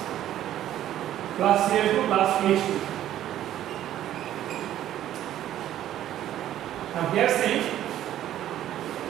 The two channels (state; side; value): quieter; left; 12.2 dB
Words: plus Cl2 plus H2. Now here see,